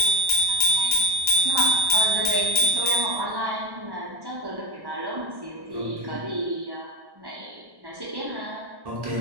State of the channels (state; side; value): late; left; 1.1 ms